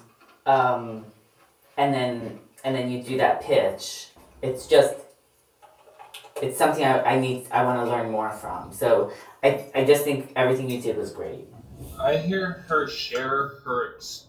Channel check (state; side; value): identical; both; correlation 1.00